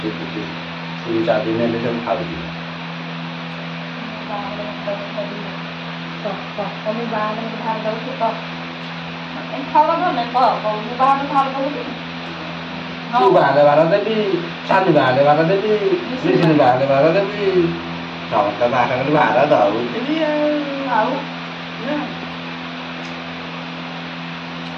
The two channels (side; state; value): both; identical; correlation 1.00